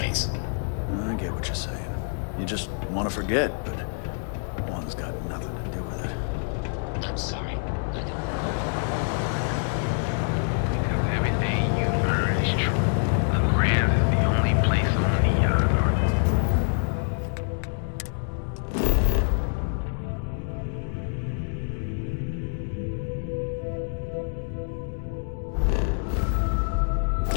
I get what you're saying. You just want to forget, but one's got nothing to do with it. I'm sorry. Because everything you've heard is true. The Grand is the only place on Neon Earth.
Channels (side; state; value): right; silent; 61 dB below the other